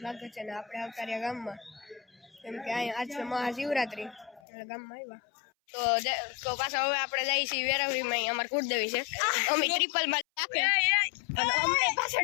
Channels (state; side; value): drops out; right; at 4.4 s